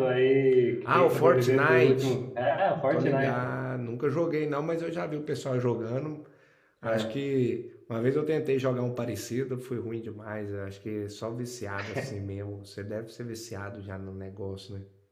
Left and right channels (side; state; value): both; identical; correlation 1.00